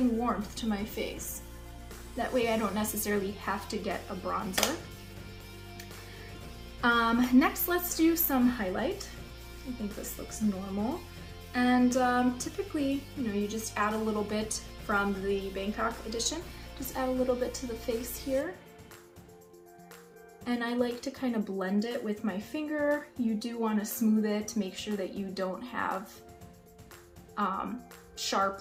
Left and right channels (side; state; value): both; identical; correlation 1.00